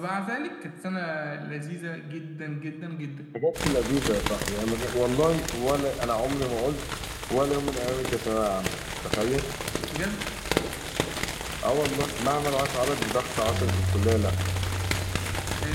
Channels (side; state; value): both; identical; correlation 1.00